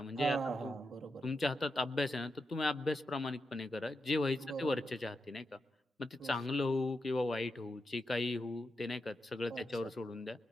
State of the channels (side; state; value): both; normal; correlation 0.86